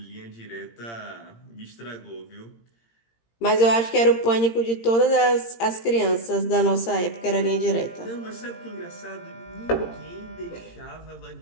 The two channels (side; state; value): right; late; 17 ms